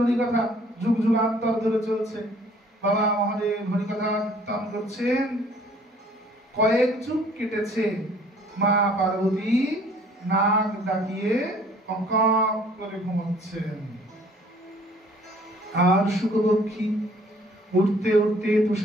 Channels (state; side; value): normal; both; correlation 0.57